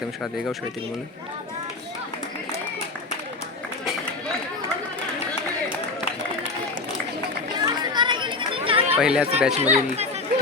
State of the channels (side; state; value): right; quieter; 3.7 dB